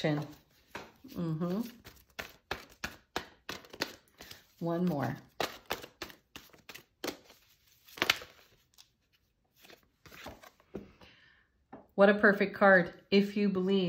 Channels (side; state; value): both; identical; correlation 1.00